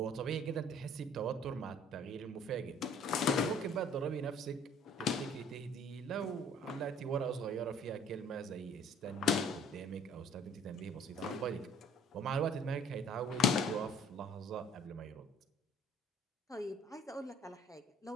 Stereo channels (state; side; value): normal; both; correlation 0.55